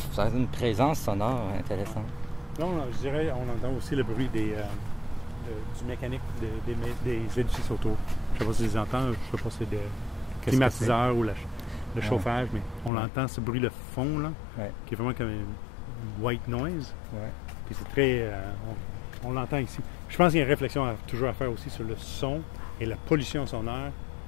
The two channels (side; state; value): right; drops out; at 12.9 s